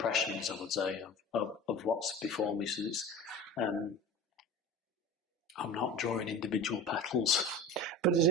I would say, of what's before me. So it's, I'm not drawing individual petals. But does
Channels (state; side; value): normal; both; correlation 0.34